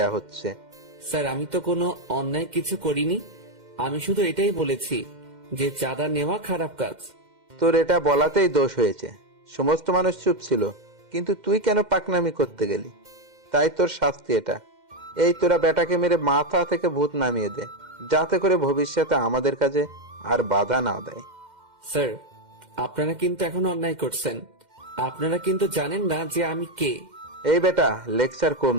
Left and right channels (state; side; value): late; left; 2.1 ms